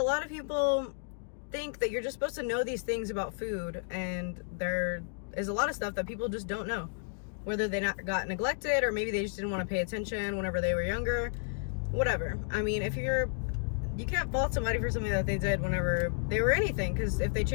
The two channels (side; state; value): right; silent; digital silence